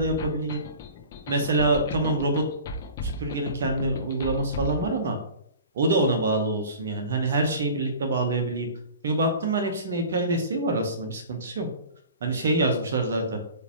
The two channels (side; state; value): both; inverted; correlation -0.41